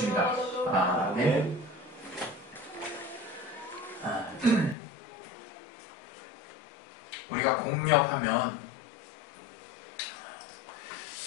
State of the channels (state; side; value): drops out; right; at 4.8 s